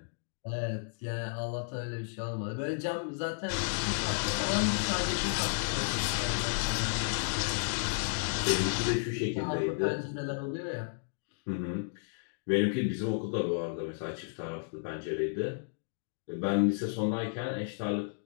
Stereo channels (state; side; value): silent; right; digital silence